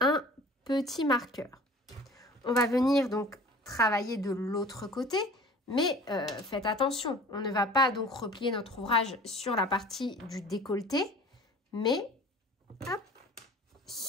petit marqueur. On va venir donc travailler de l'autre côté, mais faites attention, on ne va pas donc replier notre ouvrage sur la partie du décolleté, mais hop,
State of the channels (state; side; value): normal; both; correlation 0.44